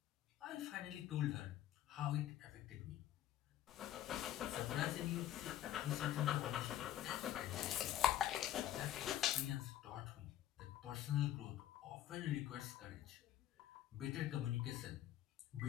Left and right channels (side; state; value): right; quieter; 12.3 dB